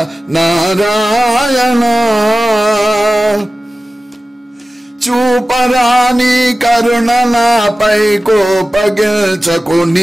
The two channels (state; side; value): normal; both; correlation 0.95